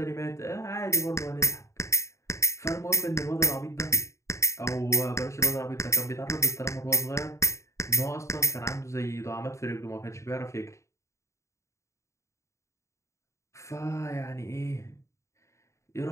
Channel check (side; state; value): right; late; 0.14 ms